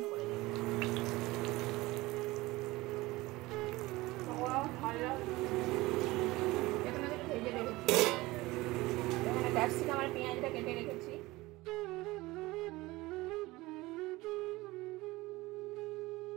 করে দিই। পকোড়াও ভালো এখানে একটু ভেজে রেখেছি। এখানে ক্যাপসিকাম আর পেঁয়াজটা কেটে রেখেছি।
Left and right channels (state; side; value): quieter; left; 20.2 dB